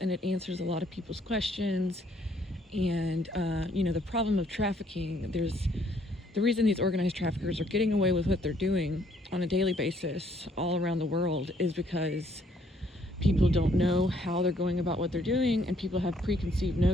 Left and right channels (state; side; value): normal; both; correlation 0.66